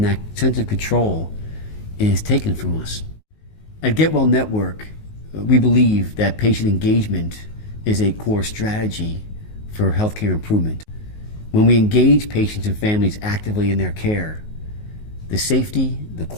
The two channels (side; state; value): right; late; 19 ms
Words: that sense of control is taken from us. At Get Well Network, we believe that patient engagement is a core strategy for healthcare improvement. When we engage patients and families actively in their care, the safety, the